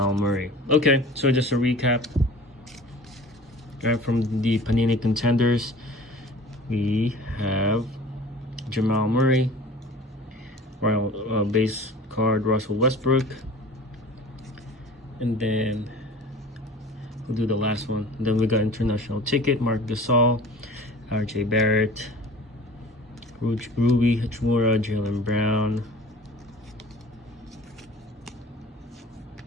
Murray. Okay, so just a recap. Right, from the Panini contenders, we have Jamal Murray, Royal base card Russell Westbrook, and then we'll do the last one. And then we got international ticket Mark Gasol, R.J. Barrett, Ruby Hachimura, Jaylen Brown.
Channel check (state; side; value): normal; both; correlation 0.43